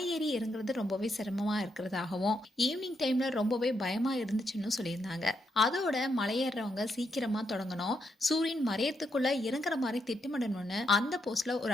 ஏறி இறங்குறது ரொம்பவே சிரமமா இருக்கிறதாகவும் ஈவினிங் டைம்ல ரொம்பவே பயமா இருந்துச்சுன்னு சொல்லியிருந்தாங்க. அதோட மலையேறவங்க சீக்கிரமா தொடங்கணும், சூரியன் மறையத்துக்குள்ள இறங்குற மாதிரி திட்டமிடணும்னு அந்த போஸ்ட்ல ஒரு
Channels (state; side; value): normal; both; correlation 0.80